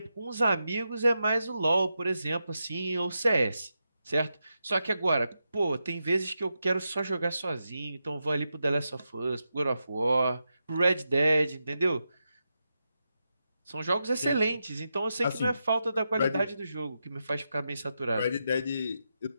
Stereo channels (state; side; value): inverted; both; correlation -0.87